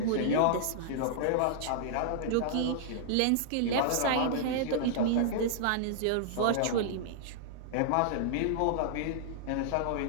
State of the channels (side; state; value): both; different; correlation -0.01